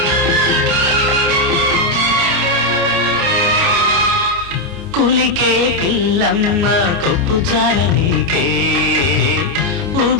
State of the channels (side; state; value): left; late; 29 ms